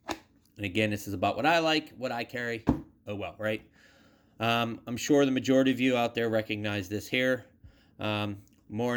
And again, this is about what I like, what I carry. Oh well, right? I'm sure the majority of you out there recognize this here.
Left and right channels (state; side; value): identical; both; correlation 1.00